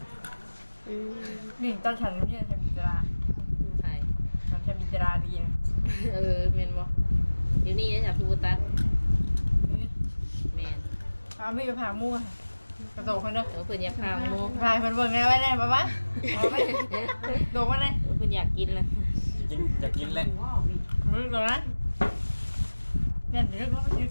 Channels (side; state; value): both; inverted; correlation -1.00